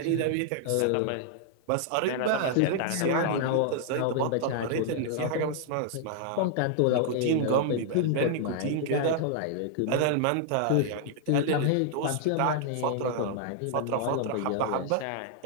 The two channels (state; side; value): different; both; correlation -0.01